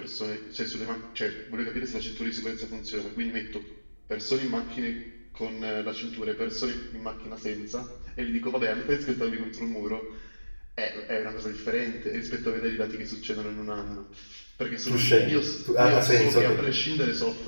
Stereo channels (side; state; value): both; inverted; correlation -1.00